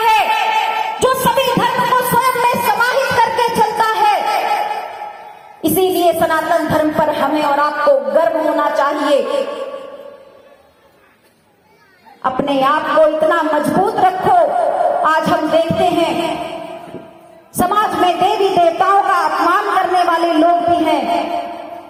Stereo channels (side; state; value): both; identical; correlation 1.00